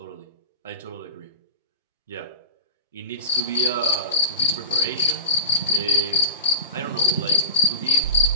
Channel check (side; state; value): both; inverted; correlation -0.33